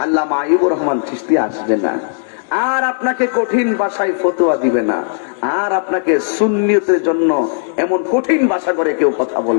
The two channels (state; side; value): silent; right; 69 dB below the other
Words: আল্লামা আইয়ুবুর রহমান চিশতি আসবে না, আর আপনাকে কঠিন ভাষায় ফতোয়া দিবে না, আর আপনাকে সুন্নিয়তের জন্য এমন কঠিন ভাষা করে কেউ কথা